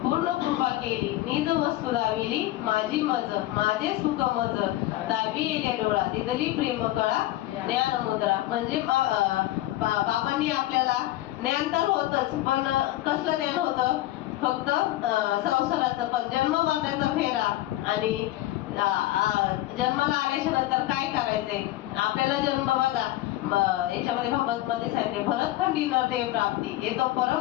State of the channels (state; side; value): quieter; right; 15.9 dB